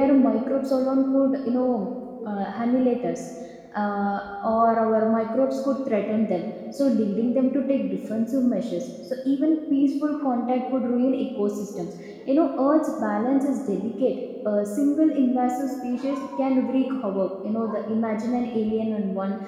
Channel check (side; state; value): both; identical; correlation 1.00